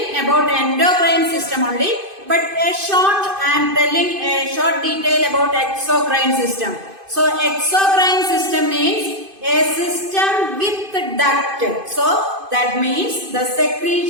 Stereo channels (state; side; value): late; left; 2.5 ms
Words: about endocrine system only, but I am telling a short detail about exocrine system. So exocrine system means a system with duct. So that means the